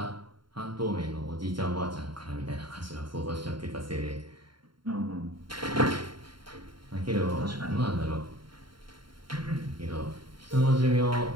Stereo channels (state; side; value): late; left; 0.73 ms